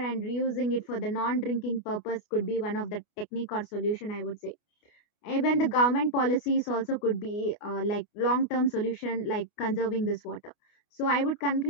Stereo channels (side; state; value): right; late; 29 ms